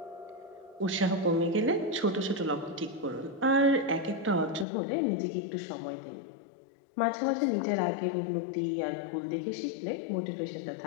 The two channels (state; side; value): drops out; right; at 4.7 s